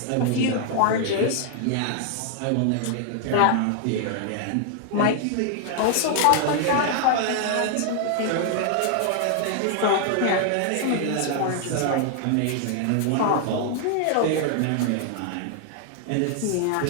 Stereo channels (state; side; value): different; both; correlation 0.00